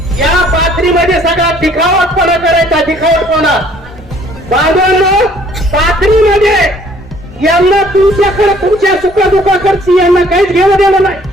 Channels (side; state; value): both; normal; correlation 0.59